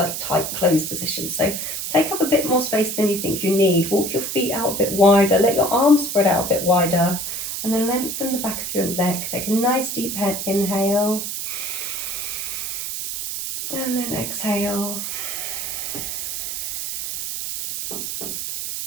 tight closed position. So take up a bit more space than you think you need. Walk your feet out a bit wider, let your arms spread out a bit wider, and then lengthen the back of your neck. Take a nice deep inhale, and then exhale.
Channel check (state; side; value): noise; right; hiss, 4 dB below the sound